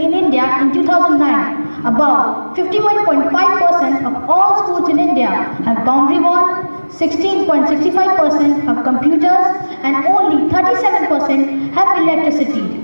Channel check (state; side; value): inverted; both; correlation -1.00